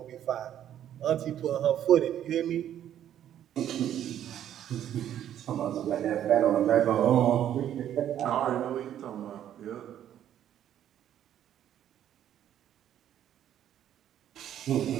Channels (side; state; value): left; quieter; 10.8 dB